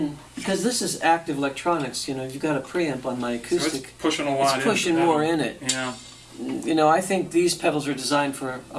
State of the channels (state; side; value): identical; both; correlation 1.00